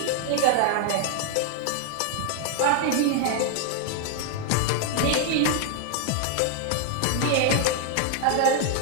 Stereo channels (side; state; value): both; different; correlation 0.00